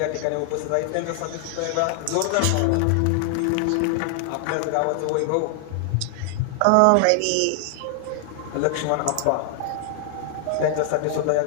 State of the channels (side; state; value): both; different; correlation 0.00